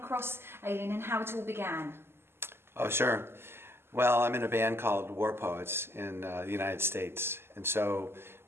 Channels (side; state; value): left; late; 0.12 ms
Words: Aileen and how it all began. Oh, sure. Well, I'm in a band called War Poets in the United States, and so